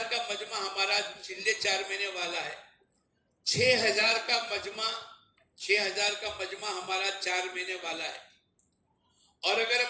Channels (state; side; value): identical; both; correlation 1.00